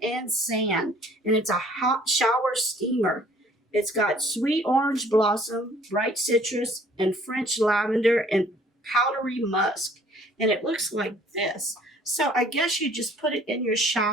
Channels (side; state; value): both; normal; correlation 0.57